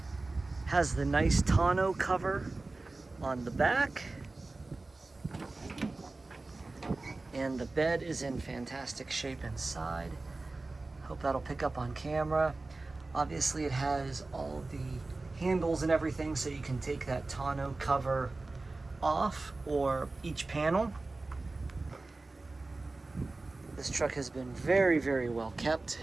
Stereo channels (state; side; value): quieter; left; 3.3 dB